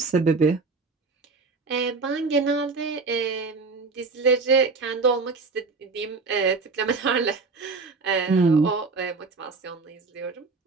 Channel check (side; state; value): left; quieter; 4.2 dB